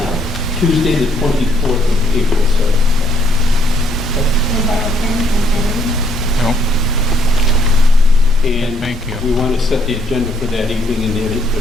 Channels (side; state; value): both; normal; correlation 0.69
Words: Tuesday, the 24th of April, sir. Wanna borrow a pen and pen? No. And Thank you. we want to set the agenda for that evening, and